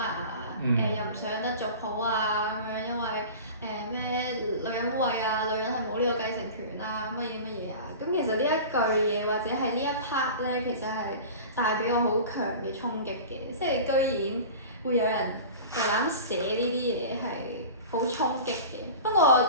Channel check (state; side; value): inverted; both; correlation -0.35